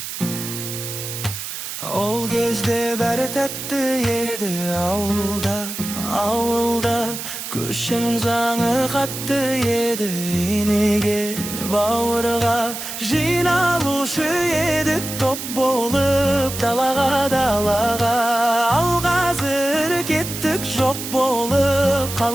Ол кезде бәрі тәтті еді ауылда Көшің заңы қатты еді енеге бауырға Жиналушы едік топ болып далаға Ал қазір кеттік жоқ болып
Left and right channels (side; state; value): right; noise; hiss, 7 dB below the sound